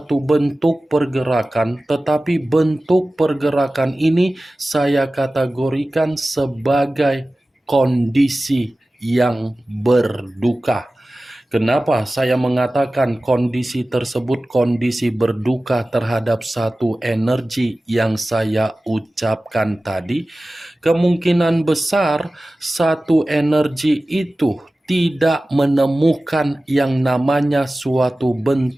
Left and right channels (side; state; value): both; normal; correlation 0.96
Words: bentuk pergerakan, tetapi bentuk pergerakan ini saya kategorikan sebagai kondisi yang berduka. Kenapa saya mengatakan kondisi tersebut kondisi berduka terhadap satu energi yang saya ucapkan tadi? Kemungkinan besar satu energi itu tidak menemukan yang namanya suatu